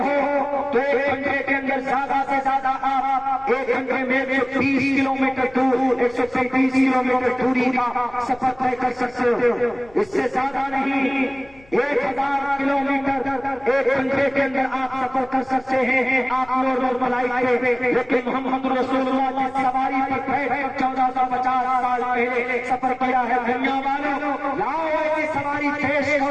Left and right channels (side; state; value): left; noise; rumble, 27 dB below the sound